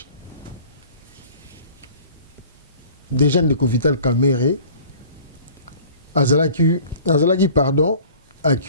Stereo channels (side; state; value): both; inverted; correlation -0.47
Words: déjà de Vital Kamerhe azalaki pardon